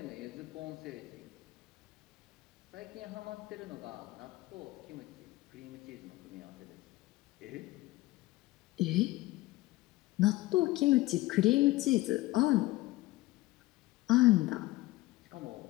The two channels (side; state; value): right; quieter; 18.8 dB